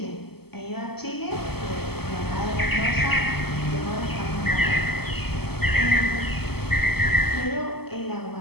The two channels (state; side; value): late; right; 0.96 ms